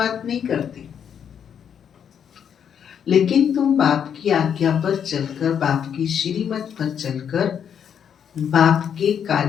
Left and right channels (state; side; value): quieter; right; 8.2 dB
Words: नहीं करते, लेकिन तुम बाप की आज्ञा पर चलकर, बाप की श्रीमत पर चलकर बाप के